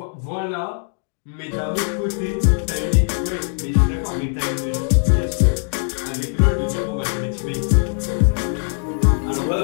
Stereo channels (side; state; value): right; silent; 56 dB below the other